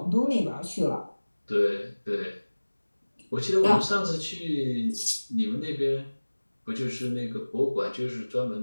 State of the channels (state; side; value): inverted; both; correlation -1.00